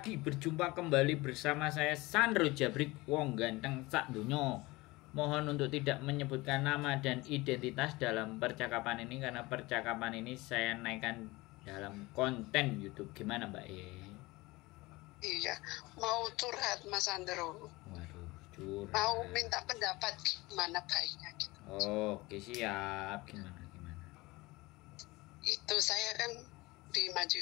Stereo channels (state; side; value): quieter; right; 21.7 dB